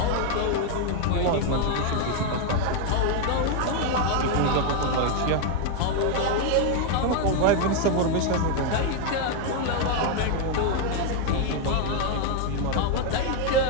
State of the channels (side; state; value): both; different; correlation 0.01